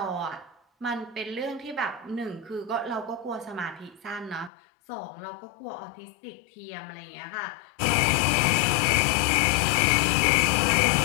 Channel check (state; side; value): drops out; right; at 4.5 s